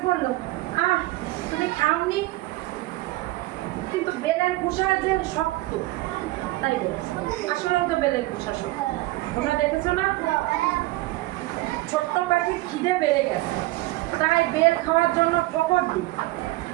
বললো তুমি খাওনি, কিন্তু বেলের খোসা যে শক্ত, তাই বলছে। আসলে তো বেলের খোসা শক্ত, তোমরা দেখেছো না? ছোট্ট পাখির খিদে বেড়ে গেছে, তাই বেল খাওয়ার জন্য ঠোকর দিই,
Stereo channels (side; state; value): left; quieter; 19.3 dB